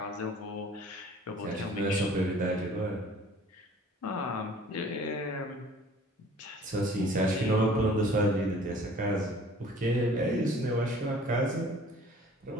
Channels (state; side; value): normal; both; correlation 0.51